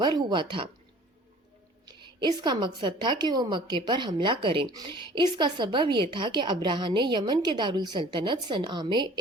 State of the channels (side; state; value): both; normal; correlation 0.48